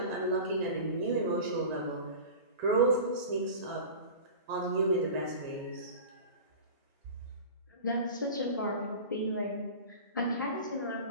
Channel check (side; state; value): both; inverted; correlation -0.35